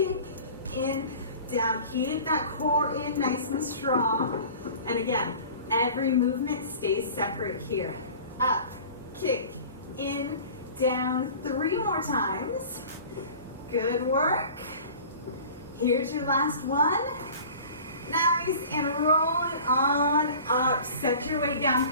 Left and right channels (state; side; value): inverted; both; correlation -0.42